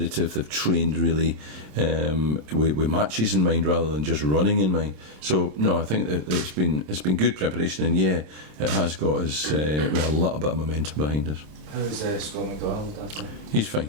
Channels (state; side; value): late; left; 27 ms